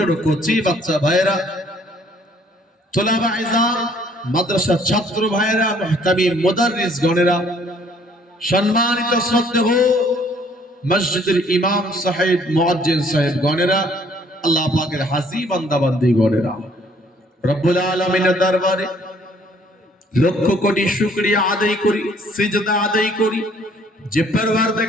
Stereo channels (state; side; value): normal; both; correlation 0.61